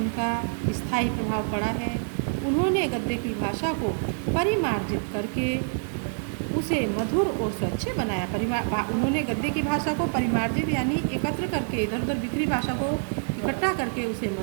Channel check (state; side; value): silent; left; 61 dB below the other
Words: स्थायी प्रभाव पड़ा है। उन्होंने गद्य की भाषा को परिमार्जित करके उसे मधुर और स्वच्छ बनाया। उन्होंने गद्य की भाषा को परिमार्जित यानी एकत्र करके, इधर उधर बिखरी भाषा को इकट्ठा करके उसे